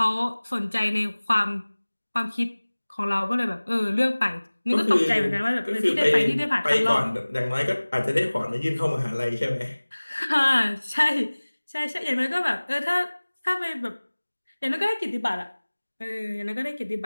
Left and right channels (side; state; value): both; inverted; correlation -1.00